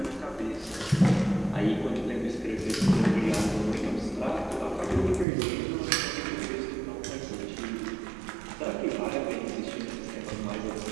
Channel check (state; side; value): drops out; left; at 5.2 s